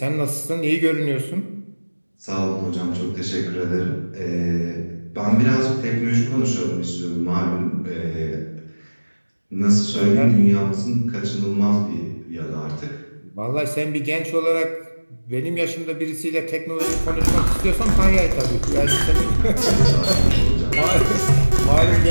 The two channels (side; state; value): both; inverted; correlation -1.00